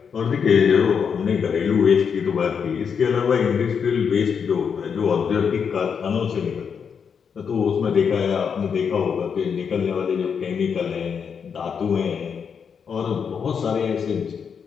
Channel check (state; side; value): quieter; right; 6.7 dB